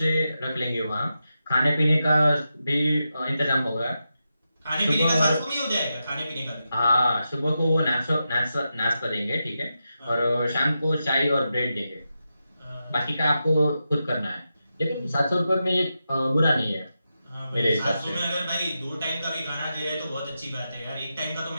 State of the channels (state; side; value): inverted; both; correlation -0.89